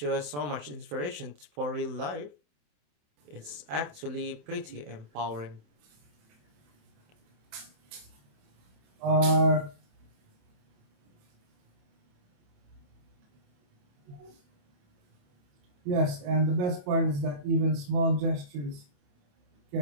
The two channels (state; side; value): late; left; 28 ms